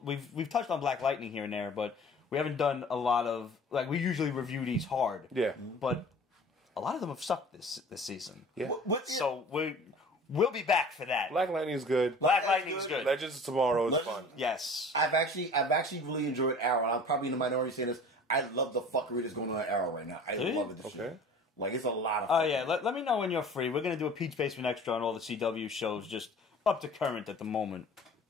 We've touched on Black Lightning here and there, but we haven't done a lot of... Like, we usually review these hard. Yeah. But a lot of them have sucked this season. Yeah. So we'll be back for that. Black Lightning is good. Black Lightning is good. Legends of Tomorrow is fun. Yes. I've actually really enjoyed Arrow. I'm probably in the minority saying this. I love the fuckery that's going on at Arrow right now. I love it. Shit. Like, it's a lot of fun. Oh, yeah. Let me know when you're free. We're going to do a Pete's Basement Extra on all the CW shows, just up to current at the moment.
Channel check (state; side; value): normal; both; correlation 0.44